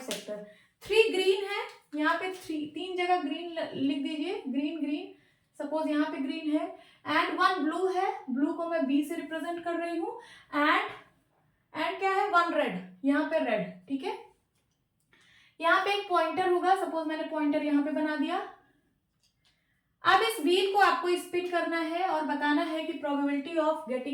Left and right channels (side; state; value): both; identical; correlation 1.00